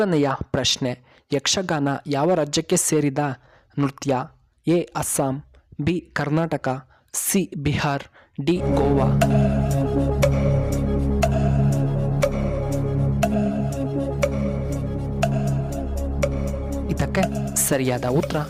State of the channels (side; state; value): both; identical; correlation 1.00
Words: ಪ್ರಶ್ನೆ, ಯಕ್ಷಗಾನ ಯಾವ ರಾಜ್ಯಕ್ಕೆ ಸೇರಿದ ನೃತ್ಯ? A Assam, B Karnataka, C Bihar, D Goa. ಇದಕ್ಕೆ ಸರಿಯಾದ ಉತ್ತರ